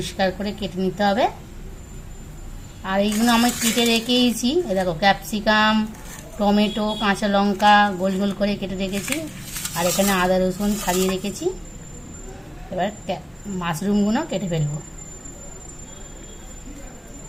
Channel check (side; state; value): both; identical; correlation 1.00